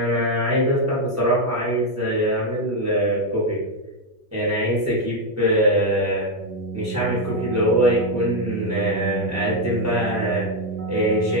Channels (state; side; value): normal; both; correlation 0.03